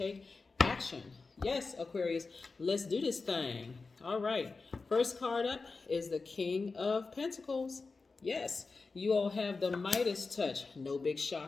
action. Yes, Aquarius, let's do this thing. All right, first card up is the King of Pentacles. Yes, you all have the Midas touch. No big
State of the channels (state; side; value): quieter; right; 4.1 dB